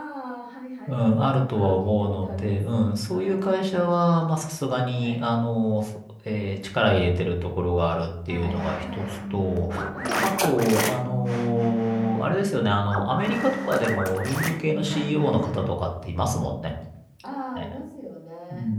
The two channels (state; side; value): identical; both; correlation 1.00